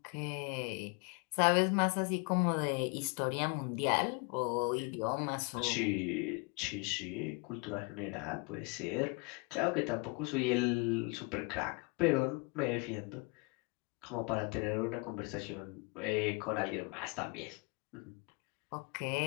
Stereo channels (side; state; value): right; quieter; 30.9 dB